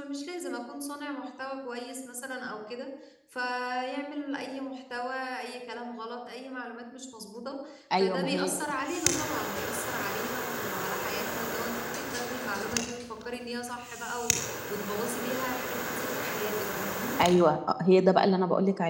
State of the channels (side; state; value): both; identical; correlation 1.00